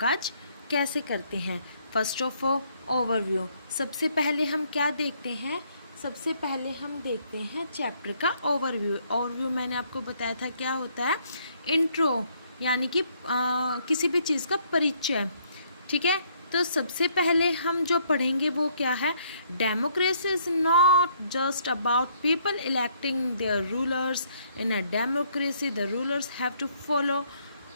कैसे करते हैं. First of all overview. सबसे पहले हम क्या देखते हैं? सबसे पहले हम देखते हैं चैप्टर का ओवरव्यू मैंने आपको बताया था क्या होता है. इंट्रो यानी कि किसी भी चीज़ का परिचय. ठीक है, तो सबसे पहले हम जो पढ़ेंगे वो क्या है. Democracy is not just about people electing their rulers. In a democracy the rulers have to follow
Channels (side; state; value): both; inverted; correlation -0.68